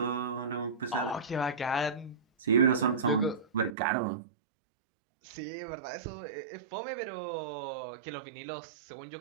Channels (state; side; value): drops out; left; at 3.8 s